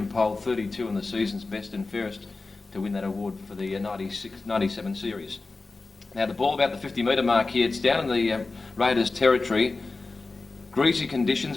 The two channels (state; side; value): quieter; right; 3.6 dB